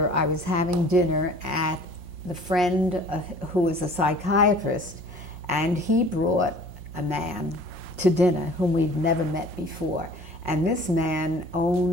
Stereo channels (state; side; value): late; left; 5.6 ms